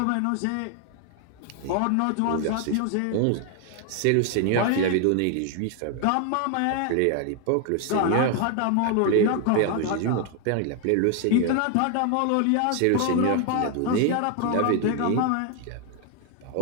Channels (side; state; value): both; different; correlation 0.01